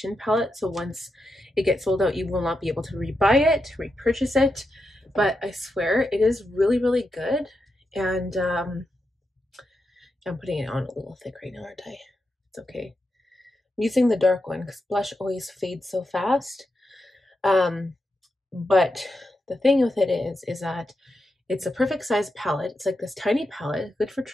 palette, so once it gets sold out, you will not be able to rebuy it, repurchase it. But I swear it is really, really good. And I'm putting it on a little thick right now, aren't I? It's okay. I'm using the dark one because blush always fades so fast. But the thing with it is that it's a perfect size palette. It's like this tiny palette, good for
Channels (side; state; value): both; normal; correlation 0.86